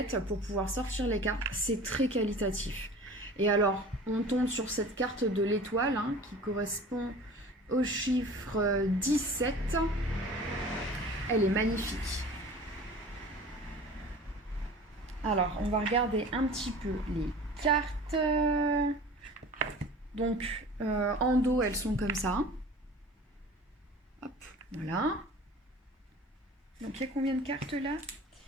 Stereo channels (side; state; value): both; normal; correlation 0.41